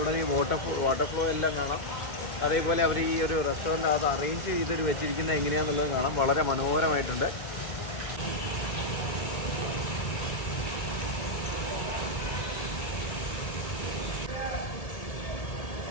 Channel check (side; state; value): right; late; 2.2 ms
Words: ഇവിടെ ഈ വാട്ടർ ഫ്ലോ എല്ലാം കാണാം. അതേപോലെ അവർ ഈ ഒരു റെസ്റ്റോറൻറ്റ് അത് അറേഞ്ച് ചെയ്തിട്ട് വെച്ചിരിക്കുന്നത് എങ്ങനെയാണെന്നുള്ളത് കാണാം. വളരെ മനോഹരമായിട്ടുണ്ട്.